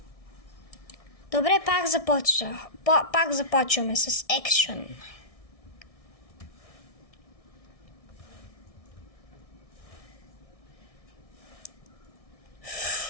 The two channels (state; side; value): late; right; 1.6 ms